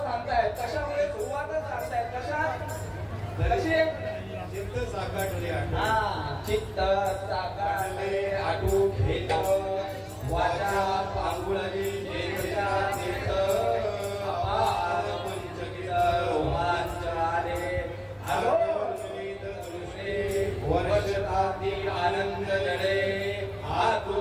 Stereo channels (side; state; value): both; identical; correlation 1.00